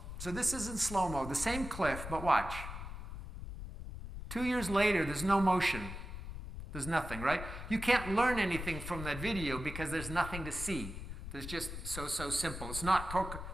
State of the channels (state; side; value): noise; left; rumble, 8 dB below the sound